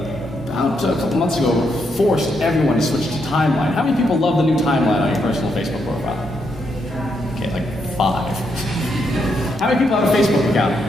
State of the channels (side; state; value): both; normal; correlation 0.79